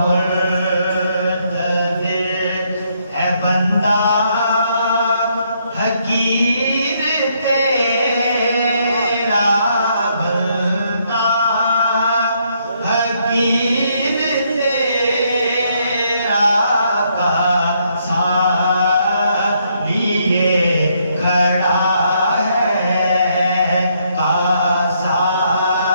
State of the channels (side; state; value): both; inverted; correlation -0.73